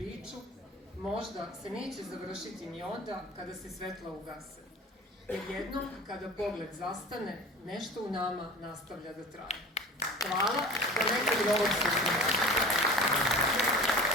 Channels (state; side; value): normal; both; correlation 0.38